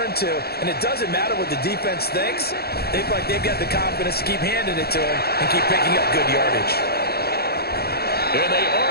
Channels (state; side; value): late; right; 0.46 ms